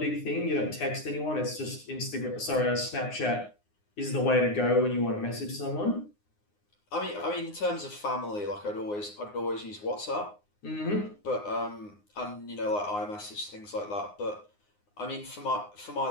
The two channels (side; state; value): right; late; 9.7 ms